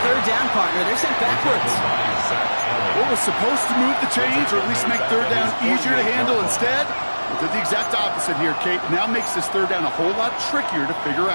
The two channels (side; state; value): both; inverted; correlation -1.00